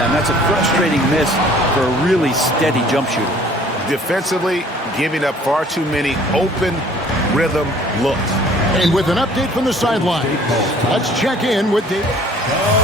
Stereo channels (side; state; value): both; normal; correlation 0.54